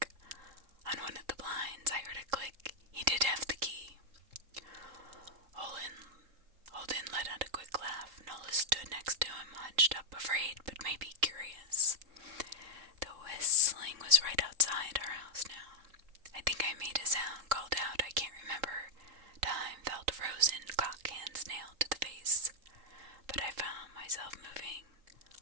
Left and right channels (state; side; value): late; left; 3.8 ms